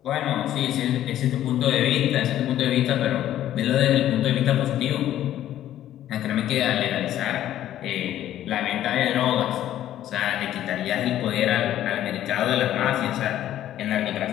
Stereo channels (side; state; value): right; quieter; 12.3 dB